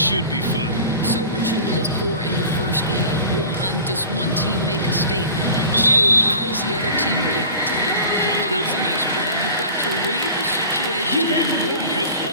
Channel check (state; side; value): inverted; both; correlation -0.40